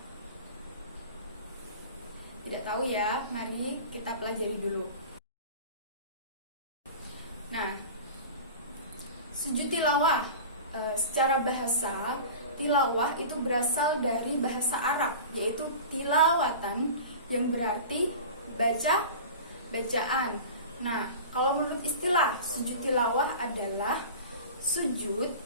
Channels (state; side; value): inverted; both; correlation -0.36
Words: Tidak tahu ya, mari kita pelajari dulu. Nah, sujud tilawah secara bahasa, tilawah itu berasal dari bahasa Arab, yaitu tilawatan, yang berarti baca, bacaan. Nah, kalau menurut istilah, sujud tilawah adalah sujud